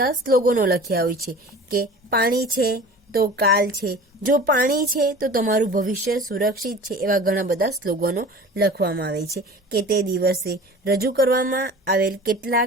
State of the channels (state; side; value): normal; both; correlation 0.40